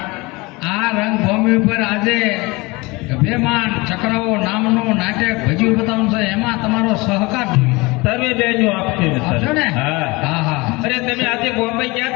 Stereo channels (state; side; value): quieter; right; 24.0 dB